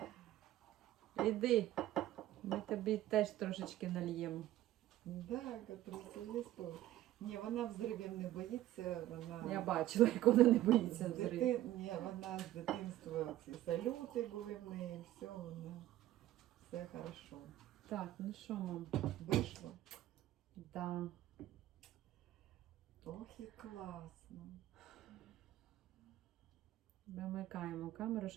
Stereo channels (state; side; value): quieter; left; 14.4 dB